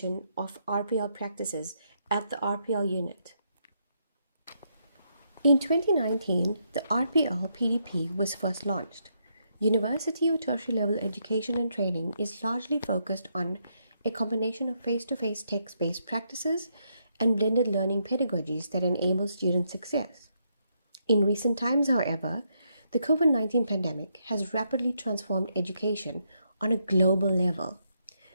of RPL practices at the RPL unit. In 2019, the RPL PDP was first launched. University or tertiary level education and training is largely focused on a combination of face-to-face text-based practices and blended learning pedagogies that enable student success. In recent times, however, the COVID-19 pandemic has rapidly transformed education on a global level.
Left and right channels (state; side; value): inverted; both; correlation -0.77